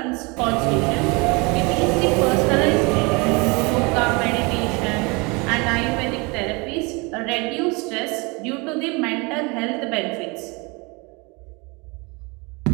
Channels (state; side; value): quieter; left; 28.1 dB